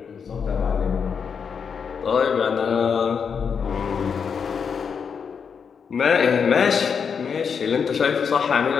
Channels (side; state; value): right; quieter; 6.5 dB